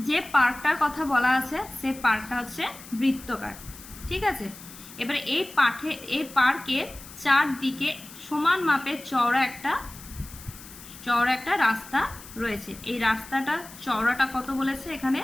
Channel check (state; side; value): noise; left; hiss, 17 dB below the sound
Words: যে পার্কটার কথা বলা আছে সেই পার্কটা হচ্ছে বৃত্তাকার, ঠিক আছে। এবারে এই পার্কের চারদিকে সমান মাপের চওড়া একটা রাস্তা রয়েছে। এই রাস্তাটা চওড়াটা কত বলেছে এখানে?